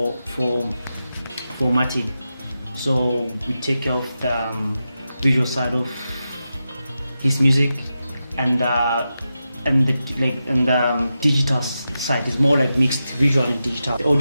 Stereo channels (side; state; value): both; inverted; correlation -0.90